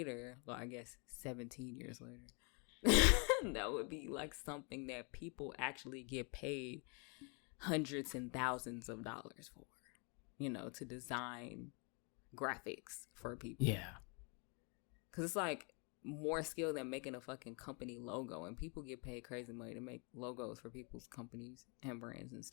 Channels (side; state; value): right; quieter; 34.6 dB